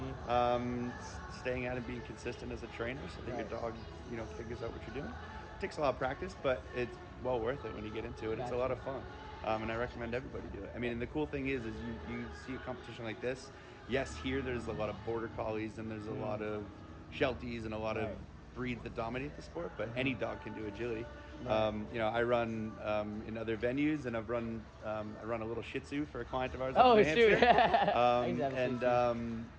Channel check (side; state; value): both; identical; correlation 1.00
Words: Staying at it, being consistent as a trainer, so that your dog, figures out what you're doing. It takes a lot of practice, but it's well worth it when you get into it. It's a lot of fun, and I recommend everybody do it. I mean, and the cool thing is you see a competition like this. Yes, here there's a lot of border collies and there's a lot of Shelties and a lot of breeds that dominate the sport, but any dog can do agility. I run in other venues, and I run a little Shih Tzu for a client of ours. up Oh, in New shoot. Hampshire. I used to have a Shih Tzu.